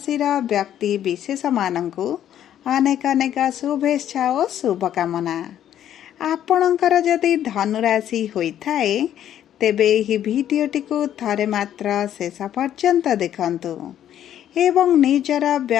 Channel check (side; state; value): right; quieter; 10.8 dB